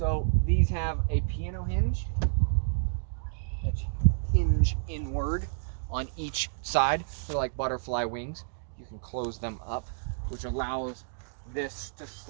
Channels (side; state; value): left; silent; digital silence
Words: these have a piano hinge that hinge inward on each side. They're like butterfly wings. You can close them up, which allows this to